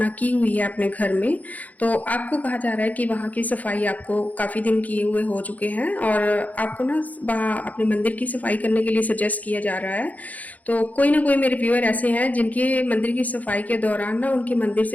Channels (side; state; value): right; late; 0.077 ms